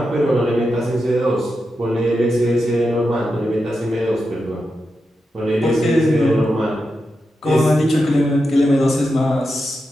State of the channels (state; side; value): normal; both; correlation 0.88